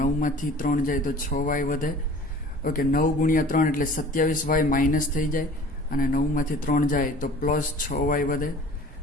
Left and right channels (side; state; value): both; normal; correlation 0.46